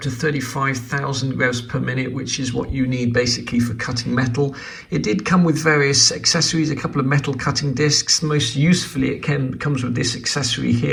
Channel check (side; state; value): both; identical; correlation 1.00